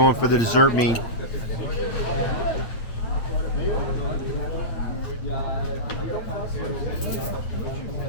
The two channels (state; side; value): late; right; 8.7 ms